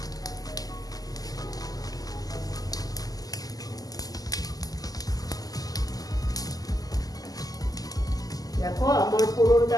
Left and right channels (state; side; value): late; right; 0.17 ms